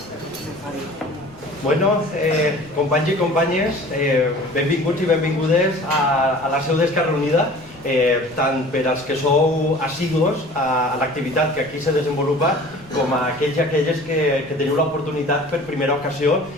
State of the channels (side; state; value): left; noise; rumble, 24 dB below the sound